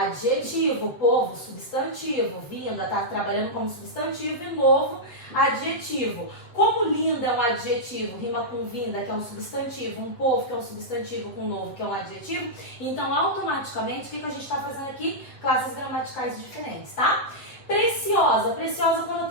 povo, substantivo. Vinda, tá trabalhando como substantivo, e novo, adjetivo. Como linda é um adjetivo, rima com vinda, que é um substantivo, um povo, que é um substantivo, com novo, que é um adjetivo. Então, automaticamente, o que a gente está fazendo aqui? Classes gramaticais diferentes, tá? Preciosa. Preciosa quando eu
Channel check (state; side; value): late; right; 7.7 ms